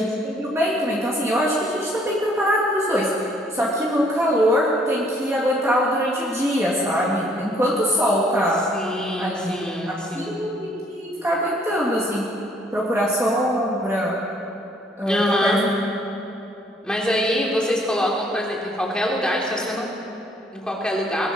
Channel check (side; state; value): both; normal; correlation 0.63